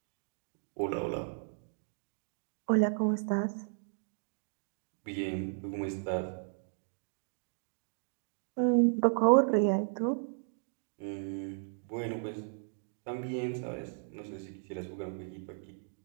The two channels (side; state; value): left; silent; digital silence